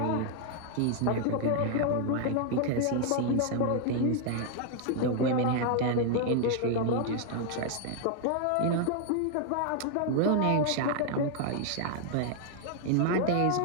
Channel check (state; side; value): different; both; correlation 0.00